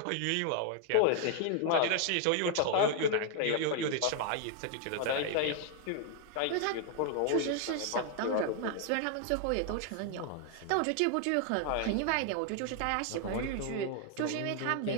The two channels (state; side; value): different; both; correlation 0.00